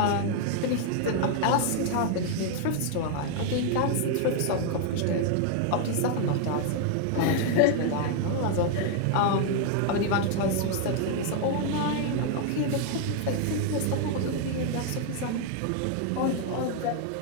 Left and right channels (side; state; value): both; different; correlation 0.00